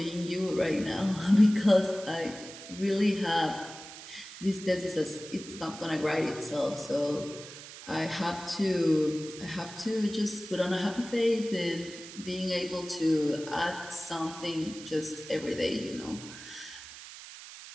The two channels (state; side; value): noise; right; hiss, 14 dB below the sound